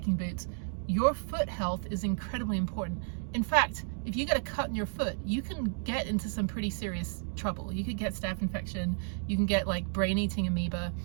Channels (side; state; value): left; silent; 56 dB below the other